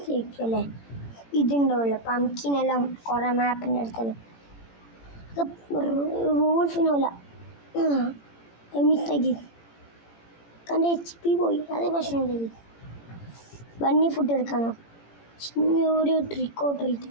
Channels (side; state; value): right; late; 18 ms